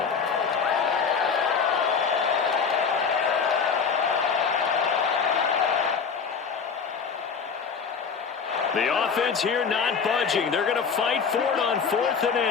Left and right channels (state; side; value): quieter; right; 6.0 dB